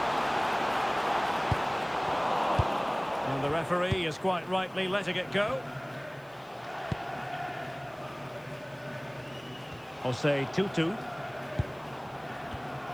And the referee is quite rightly letting it go. Jose Tutu.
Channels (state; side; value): noise; left; hiss, 29 dB below the sound